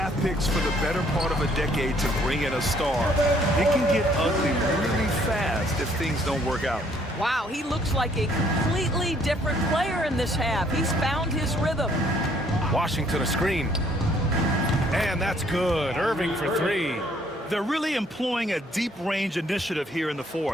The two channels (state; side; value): normal; both; correlation 0.64